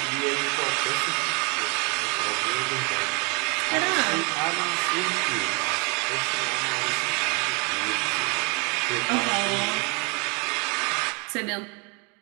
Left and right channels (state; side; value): quieter; left; 31.8 dB